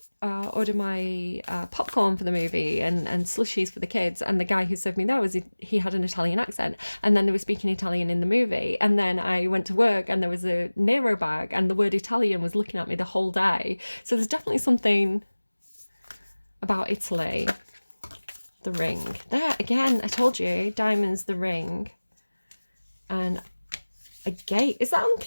order my popcorn for the movie and slushies for the kids, and the guy who served me there he had an Italian accent, and then they were speaking Italian in the movie. And then I went to work and there was a Nero bag and the word Italian was looking at me the whole day. So there's definitely something about Italy. The ring there again, I told you, diamonds, the ring, and a gate. Is that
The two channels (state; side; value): inverted; both; correlation -1.00